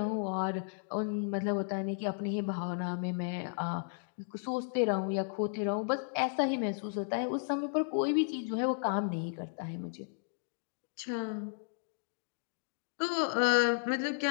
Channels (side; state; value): right; silent; digital silence